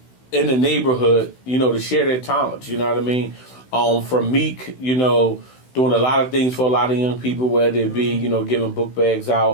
in the neighborhood, to share their talents. You know what I mean? From Meek, doing a lot of things for a lot of young people, whether it be, giving book bags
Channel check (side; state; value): right; late; 16 ms